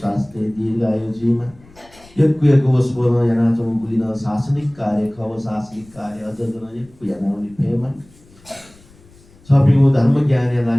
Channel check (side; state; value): left; noise; rumble, 27 dB below the sound